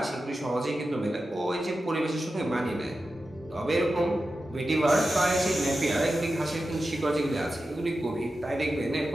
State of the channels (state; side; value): normal; both; correlation 0.92